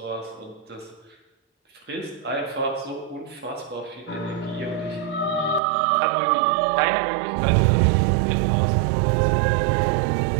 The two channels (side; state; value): left; drops out; at 5.6 s